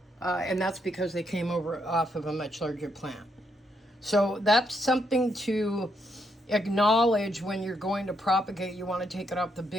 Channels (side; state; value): both; normal; correlation 0.77